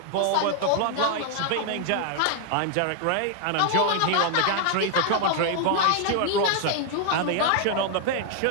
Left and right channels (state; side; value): different; both; correlation 0.00